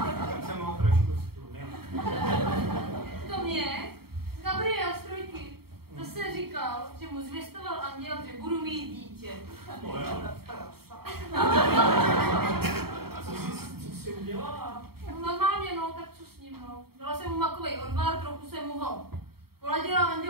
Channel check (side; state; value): left; late; 0.95 ms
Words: jsem ho trošku stlumil. To mě Gabriel z Trojky zase říkal, že mu zvěstoval anděl, že budu mít dítě. To je prasa. Co jsi udělala? No, normálně, no, tak co s ním, no. Dala jsem mu makovej odvar, trochu jsem mu ho poladila a